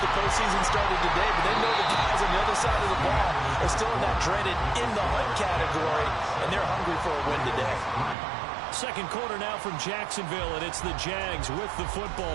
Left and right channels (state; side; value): drops out; left; at 8.2 s